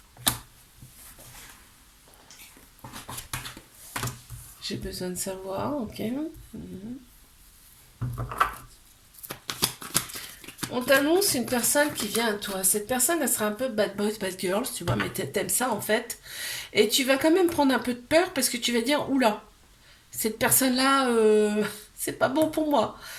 J'ai besoin de savoir, ok. On t'annonce une personne qui vient à toi. Cette personne, elle sera un peu bad boys, bad girls, tu vois, mais t'aimes ça en fait. Et tu vas quand même prendre un peu de peur parce que tu vas dire, oula, cette personne-là, c'est pas bon pour moi.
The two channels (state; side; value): identical; both; correlation 1.00